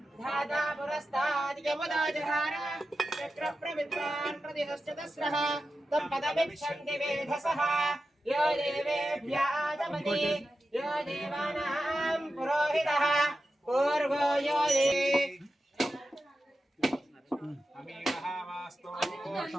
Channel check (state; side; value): normal; both; correlation 0.92